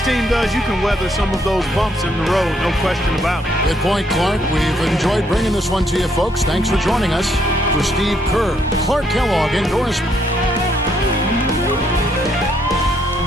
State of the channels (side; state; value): both; normal; correlation 0.71